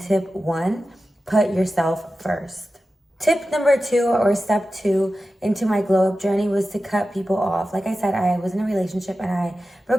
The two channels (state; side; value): normal; both; correlation 0.93